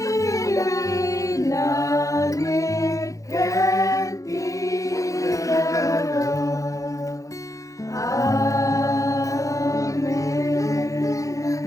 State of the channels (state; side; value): late; right; 0.16 ms